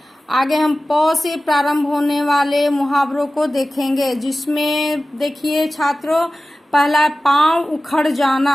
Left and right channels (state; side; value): normal; both; correlation 0.96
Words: आगे हम प से प्रारंभ होने वाले मुहावरों को देखेंगे जिसमें देखिए छात्रों, पहला पांव उखड़